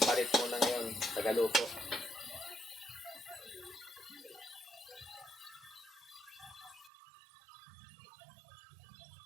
palit muna ngayon, tagaluto.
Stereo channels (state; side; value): drops out; left; at 6.9 s